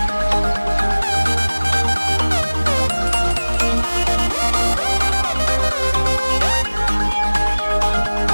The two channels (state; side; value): inverted; both; correlation -1.00